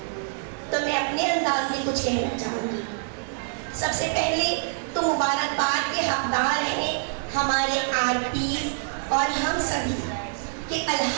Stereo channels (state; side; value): silent; left; digital silence